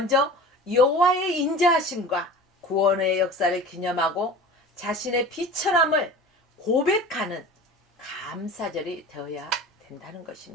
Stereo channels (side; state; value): both; normal; correlation 0.38